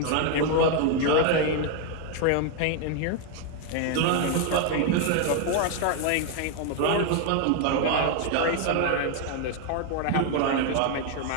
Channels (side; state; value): both; different; correlation 0.01